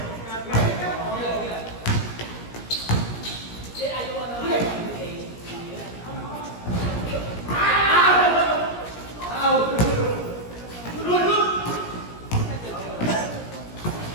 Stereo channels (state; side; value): late; right; 17 ms